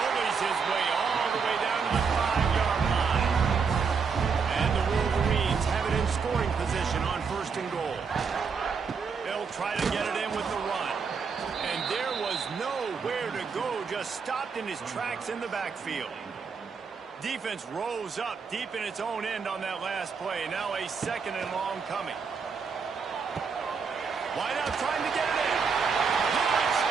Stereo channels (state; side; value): quieter; left; 5.6 dB